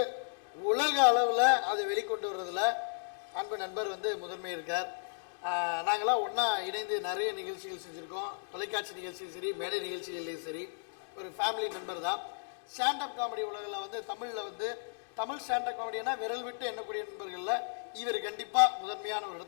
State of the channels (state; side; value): silent; right; digital silence